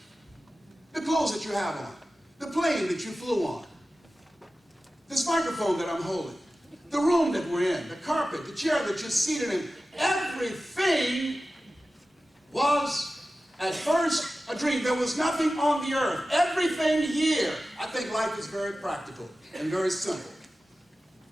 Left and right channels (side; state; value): both; normal; correlation 0.95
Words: The clothes that you have on, the plane that you flew on, this microphone that I'm holding, the room that we're in, the carpet, the chair that you're seated in, everything was, At first, a dream. There was nothing on the earth. Everything here, I think life is very practical and very simple.